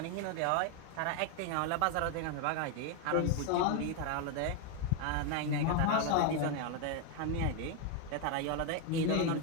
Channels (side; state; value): both; different; correlation 0.01